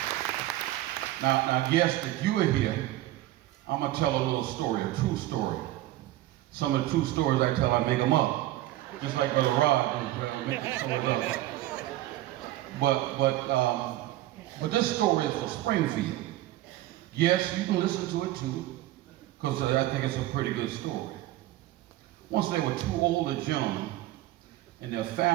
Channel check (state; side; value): quieter; left; 15.6 dB